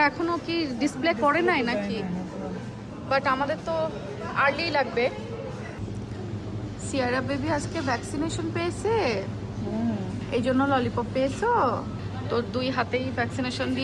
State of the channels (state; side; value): identical; both; correlation 1.00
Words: এখনো কি ডিসপ্লে করে নাই নাকি? বাট আমাদের তো আর্লি লাগবে। সিয়ারা বেবি আজকে ভ্যাকসিনেশন পেয়েছে, এই জন্য ললিপপ পেয়েছো। তো 2 হাতেই ভ্যাকসিনেশন